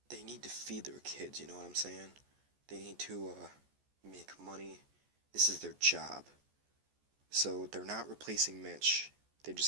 they need to feed their kids, you know what I'm saying? They need to make money. This is their job. So they're not replacing Mitch. They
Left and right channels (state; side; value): late; left; 14 ms